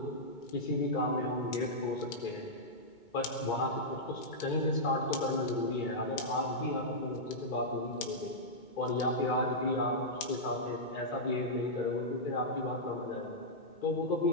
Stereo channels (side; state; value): right; late; 2.2 ms